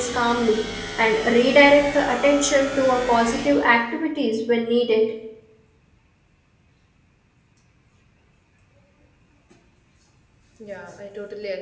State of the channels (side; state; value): both; identical; correlation 1.00